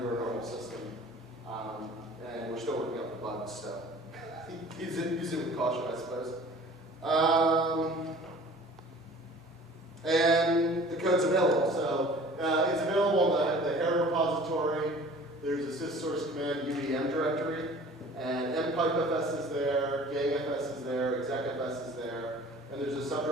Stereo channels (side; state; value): both; normal; correlation 0.46